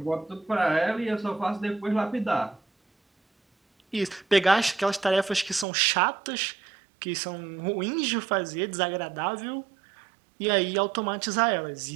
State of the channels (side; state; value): left; drops out; at 5.7 s